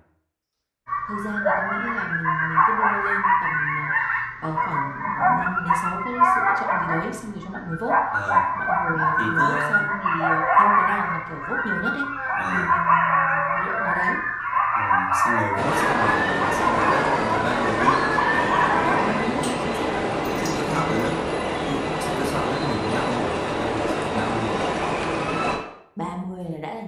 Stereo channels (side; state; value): both; identical; correlation 1.00